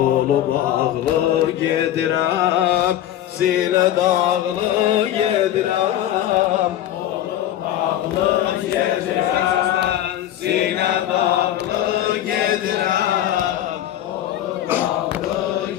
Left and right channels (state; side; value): quieter; right; 12.2 dB